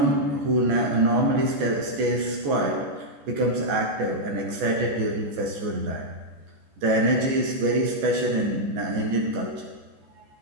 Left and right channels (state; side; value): late; left; 14 ms